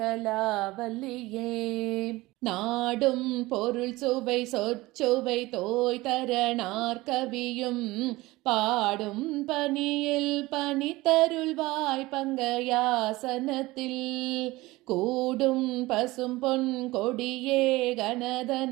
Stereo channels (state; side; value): quieter; left; 19.9 dB